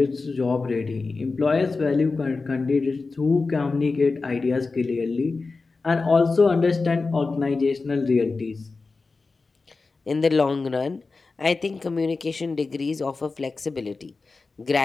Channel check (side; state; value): right; quieter; 4.0 dB